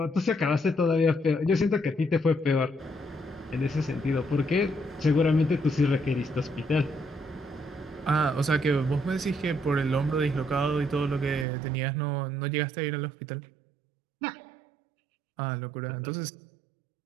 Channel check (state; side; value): drops out; left; at 11.5 s